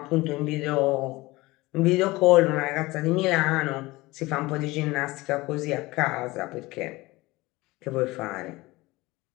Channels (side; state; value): right; quieter; 20.7 dB